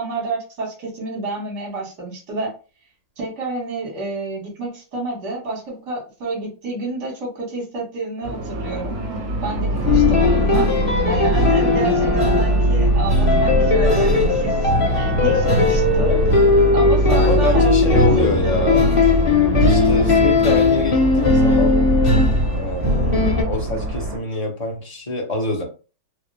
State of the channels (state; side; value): late; left; 3.4 ms